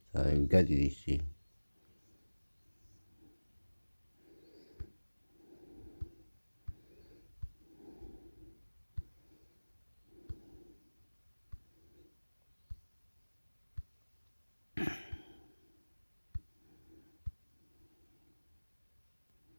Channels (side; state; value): both; inverted; correlation -1.00